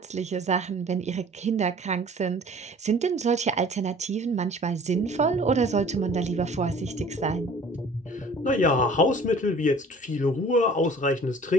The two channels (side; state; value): both; normal; correlation 0.48